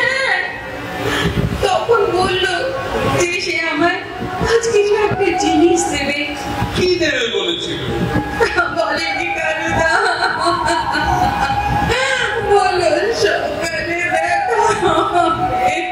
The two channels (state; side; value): identical; both; correlation 1.00